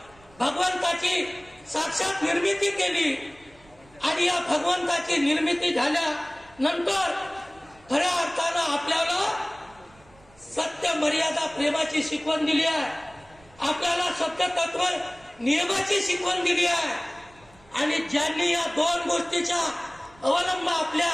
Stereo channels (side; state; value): right; noise; rumble, 27 dB below the sound